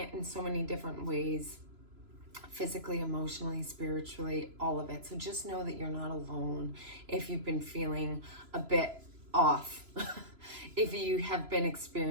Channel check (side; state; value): left; late; 3.0 ms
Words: in so many different ways, physically, emotionally, spiritually, all of it. So just know that you're not alone if you've been feeling a bit off, if you have been